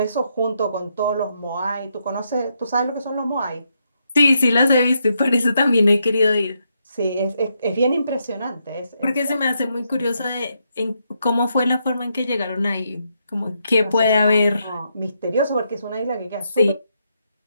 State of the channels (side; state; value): both; inverted; correlation -0.79